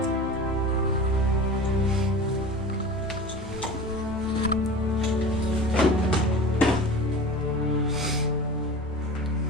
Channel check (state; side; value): normal; both; correlation 0.35